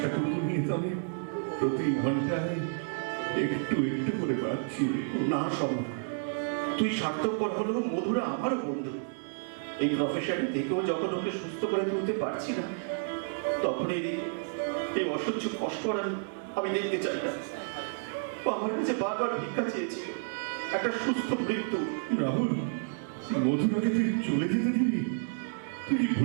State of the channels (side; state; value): left; silent; digital silence